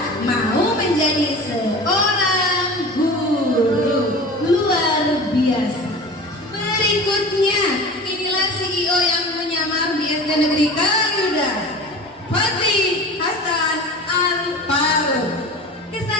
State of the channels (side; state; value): both; normal; correlation 0.36